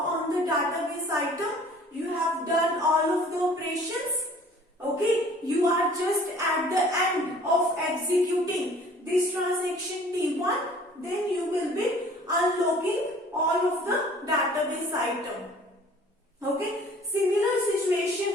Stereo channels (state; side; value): normal; both; correlation 0.51